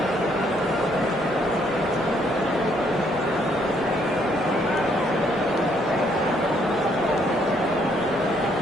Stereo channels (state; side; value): normal; both; correlation 0.69